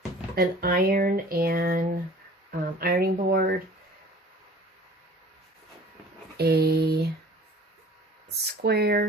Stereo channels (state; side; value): normal; both; correlation 0.47